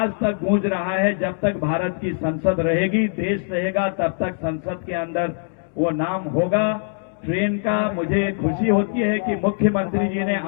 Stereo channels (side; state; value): right; silent; digital silence